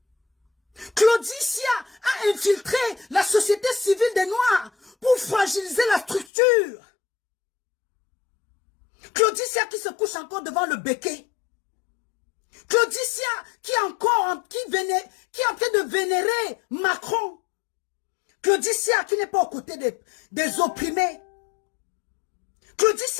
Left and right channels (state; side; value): drops out; right; at 6.2 s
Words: Claudicia a infiltré la société civile des Noirs pour fragiliser la structure. Claudicia qui se couche encore devant le béquet. Claudicia qui est en train de vénérer Macron. Claudicia qui n'est pas aux côtés des opprimés.